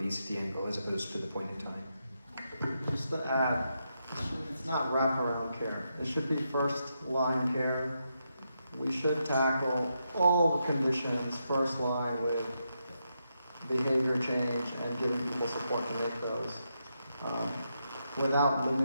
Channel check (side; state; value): both; inverted; correlation -0.83